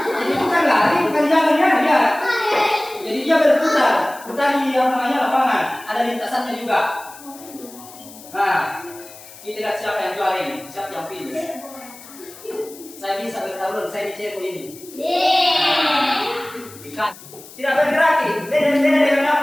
Jadi bukan lari, bukan jalan ya, dia. Jadi dia berputar di lapangan. Ada lintasannya juga. Nah, kita lihat siapa yang juara ini, siapa yang finish. Saya bisa bertarung, saya dicek ini. Ikan tidak bergerak, beda dengan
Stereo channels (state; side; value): noise; left; hiss, 19 dB below the sound